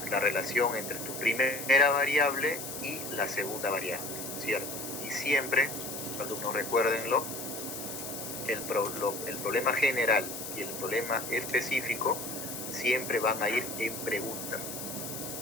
la relación entre tu primera variable y la segunda variable, ¿cierto? Y siempre, alumnos, recuérdenlo, el problema general y el problema específico siempre van a ir en pregunta.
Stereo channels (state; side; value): noise; left; hiss, 7 dB below the sound